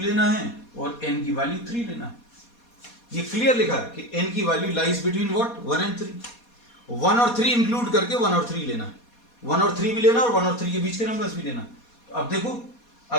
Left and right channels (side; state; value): right; late; 4.2 ms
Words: है और n की वैल्यू 3 लेना है। ये क्लियर लिखा है कि n की value lies between what? 1 and 3। 1 और 3 इंक्लूड करके 1 और 3 लेना है, 1 और 3 भी लेना और 1 और 3 के बीच के नंबर्स भी लेना। अब देखो